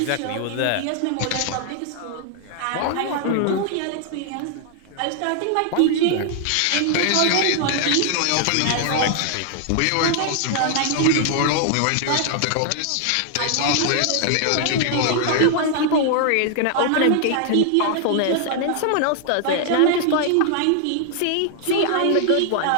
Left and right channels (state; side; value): different; both; correlation 0.00